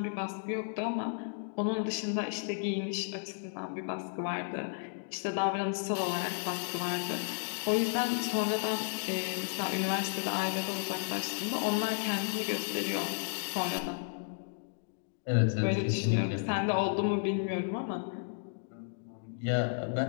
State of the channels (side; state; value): right; silent; digital silence